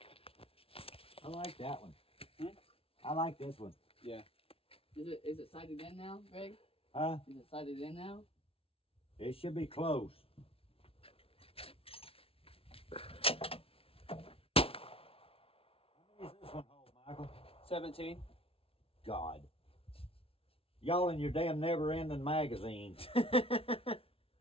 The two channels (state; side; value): late; right; 0.27 ms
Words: I like that one. Hmm? I like this one. Is it sighted in now, Greg? Huh? Is it sighted in now? It should be close. How many is this one hold, Michael? 17. God. Y'all in your damn never-ending magazine.